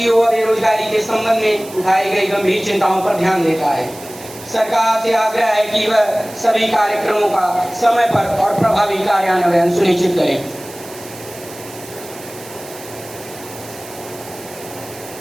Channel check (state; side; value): noise; right; hiss, 17 dB below the sound